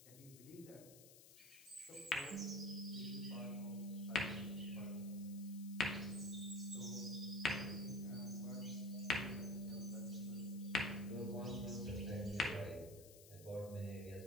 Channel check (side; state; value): left; noise; hiss, 17 dB below the sound